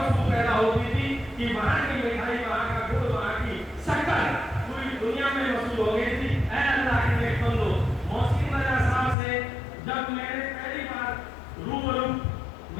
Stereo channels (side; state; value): right; drops out; at 9.2 s